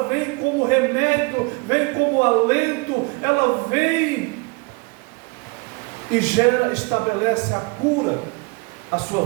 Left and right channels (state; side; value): quieter; left; 28.6 dB